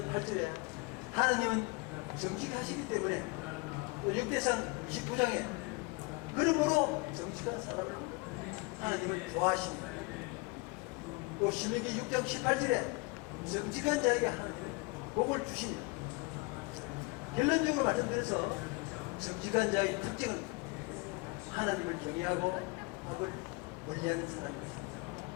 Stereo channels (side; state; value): right; quieter; 26.5 dB